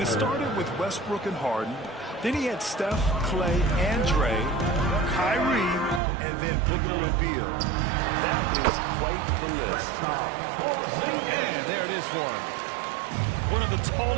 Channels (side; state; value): left; drops out; at 6.0 s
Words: started with Westbrook and Harden. Then he had Steph, Clay, and Dre, Kyrie, and then Booker and Beal. That is quite the list. And there it is for him. One of the